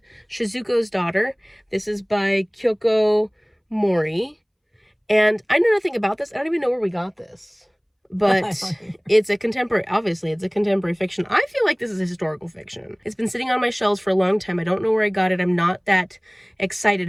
Shizuko's Daughter. This is by Kyoko Mori. And I know nothing about this. I don't even know where we got this. But it's a contemporary, obviously, it's a contemporary fiction. I feel like this is a historical fiction. It's been sitting on my shelves for a long time. I don't know where I got it. I'm not that excited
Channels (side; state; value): both; identical; correlation 1.00